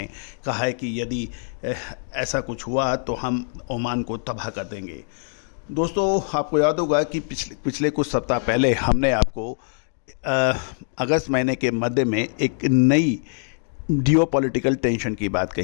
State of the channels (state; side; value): silent; right; digital silence